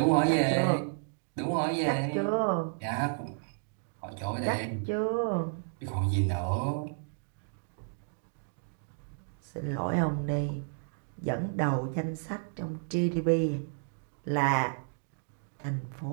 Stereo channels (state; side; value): silent; left; digital silence